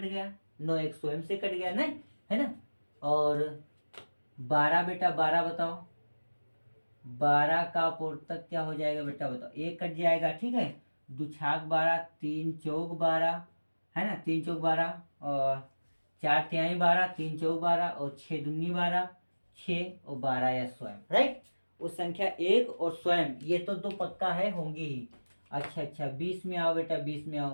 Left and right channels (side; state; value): both; inverted; correlation -1.00